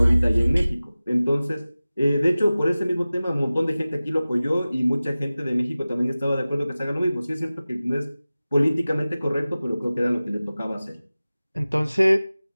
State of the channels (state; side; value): inverted; both; correlation -0.97